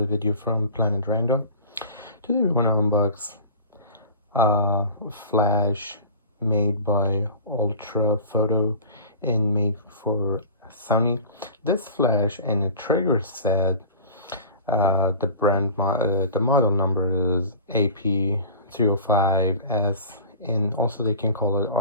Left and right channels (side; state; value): both; inverted; correlation -0.41